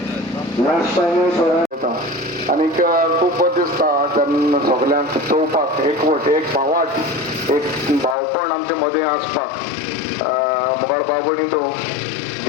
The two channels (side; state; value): right; drops out; at 8.2 s